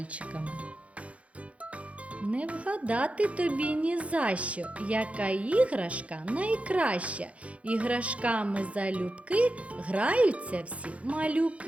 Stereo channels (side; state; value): left; late; 0.064 ms